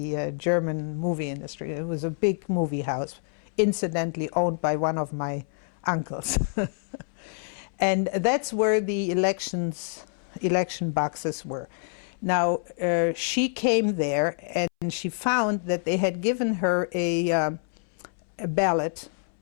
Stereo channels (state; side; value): silent; right; 60 dB below the other